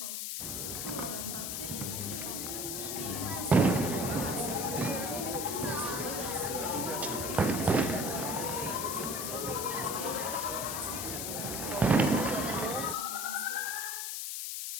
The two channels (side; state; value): left; noise; hiss, 3 dB below the sound